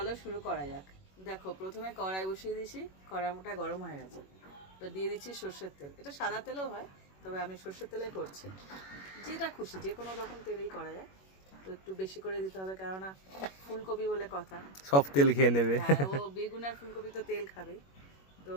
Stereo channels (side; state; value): right; late; 21 ms